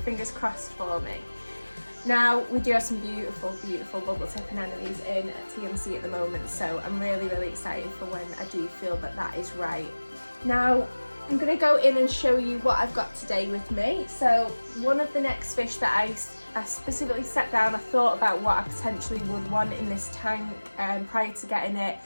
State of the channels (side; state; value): both; inverted; correlation -1.00